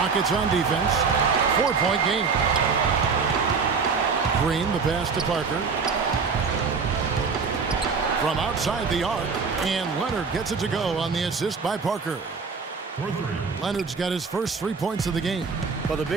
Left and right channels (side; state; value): left; quieter; 5.2 dB